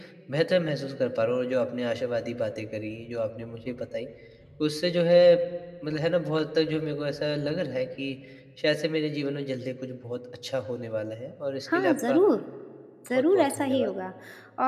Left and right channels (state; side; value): identical; both; correlation 1.00